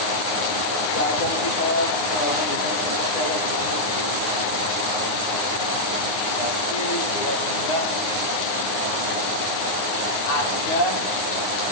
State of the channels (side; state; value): right; late; 9.7 ms